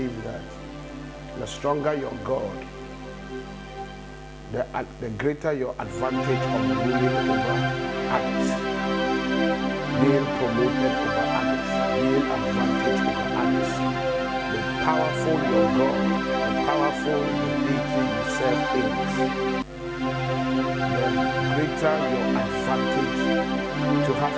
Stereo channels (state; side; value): identical; both; correlation 1.00